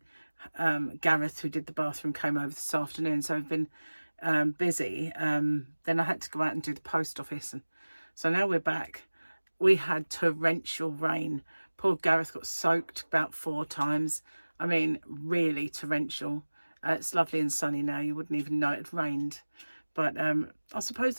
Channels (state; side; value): inverted; both; correlation -1.00